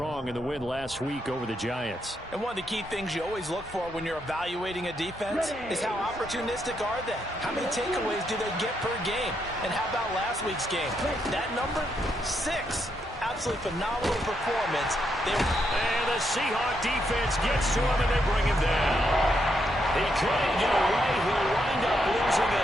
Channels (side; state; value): both; normal; correlation 0.79